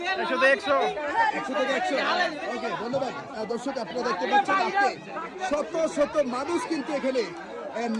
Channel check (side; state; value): both; identical; correlation 1.00